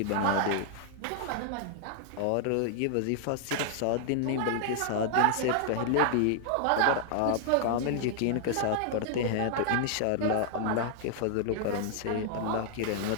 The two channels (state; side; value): different; both; correlation -0.01